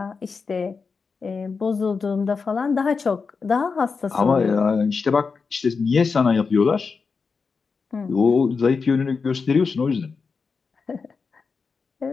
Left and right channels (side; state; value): right; quieter; 5.0 dB